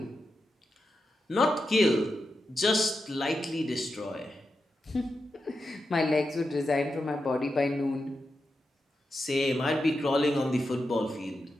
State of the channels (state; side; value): normal; both; correlation 0.88